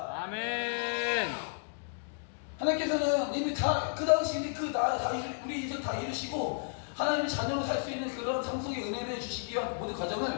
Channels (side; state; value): right; silent; 56 dB below the other